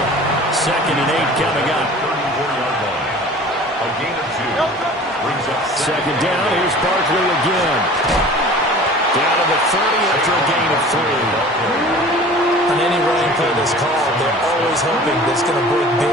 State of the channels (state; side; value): normal; both; correlation 0.43